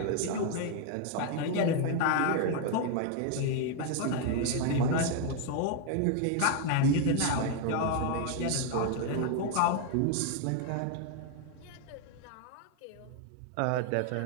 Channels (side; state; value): both; different; correlation 0.00